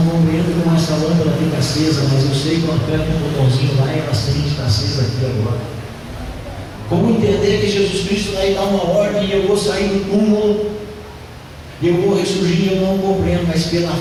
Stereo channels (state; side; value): identical; both; correlation 1.00